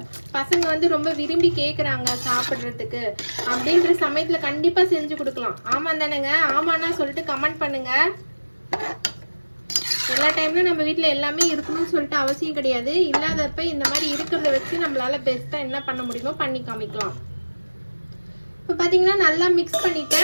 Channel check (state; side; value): inverted; both; correlation -1.00